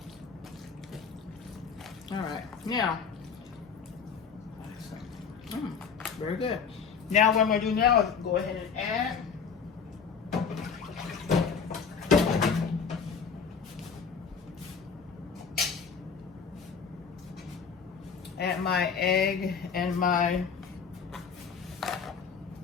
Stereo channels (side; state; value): right; quieter; 6.1 dB